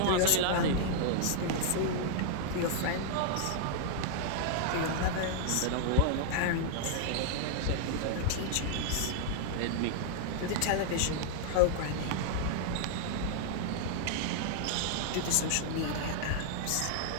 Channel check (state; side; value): different; both; correlation -0.01